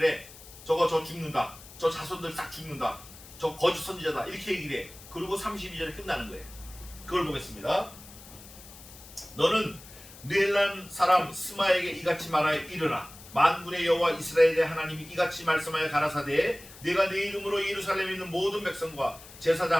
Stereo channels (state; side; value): noise; left; hiss, 18 dB below the sound